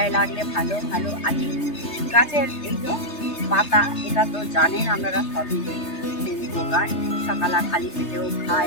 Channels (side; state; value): right; late; 3.3 ms